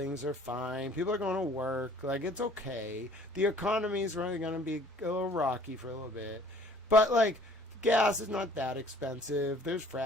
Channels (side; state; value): both; normal; correlation 0.54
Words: are fine. People are going to work. Like, it's okay. The economy is really going to be a little rocky for a little bit, but like, gas is not that expensive. There's